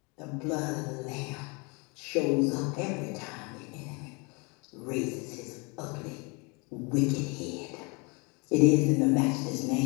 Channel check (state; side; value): quieter; right; 30.4 dB